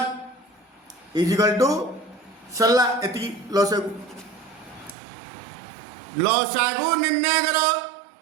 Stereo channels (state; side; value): drops out; left; at 5.0 s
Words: is equal to सरला एति लसागु निर्णय करो